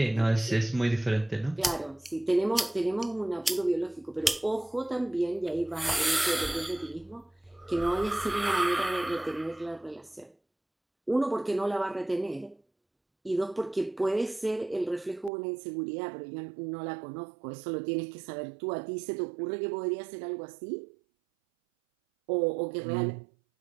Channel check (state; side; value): drops out; left; at 15.3 s